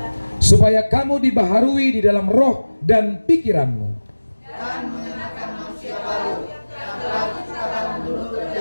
supaya kamu dibaharui di dalam roh dan pikiranmu, dan mengenakan manusia baru yang telah diciptakan menurut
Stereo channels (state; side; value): inverted; both; correlation -1.00